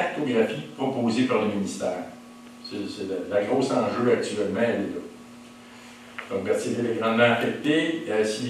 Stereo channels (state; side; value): identical; both; correlation 1.00